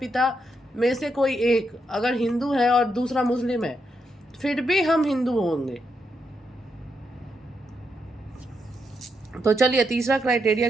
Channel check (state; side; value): normal; both; correlation 0.81